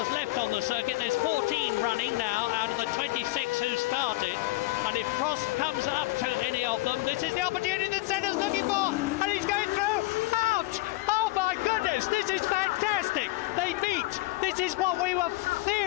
left on the circuit. There's 14 running now out of the 26 who started, and if Prost comes up to any of them, this is the opportunity that Senna's looking for, and he's going through. Ouch! Oh my goodness, this is fantastic. They meet. This is what we were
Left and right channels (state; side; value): quieter; right; 20.0 dB